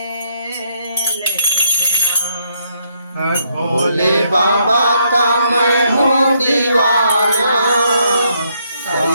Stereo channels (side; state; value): both; inverted; correlation -0.73